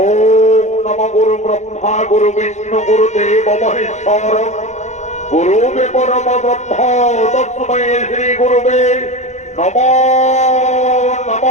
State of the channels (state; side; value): late; right; 0.34 ms